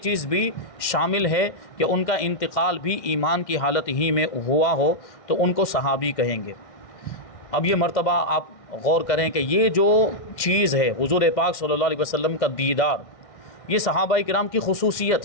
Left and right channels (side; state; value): right; late; 1.6 ms